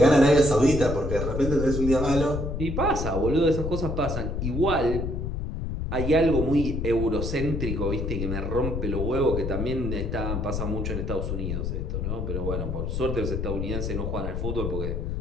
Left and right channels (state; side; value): noise; left; rumble, 3 dB below the sound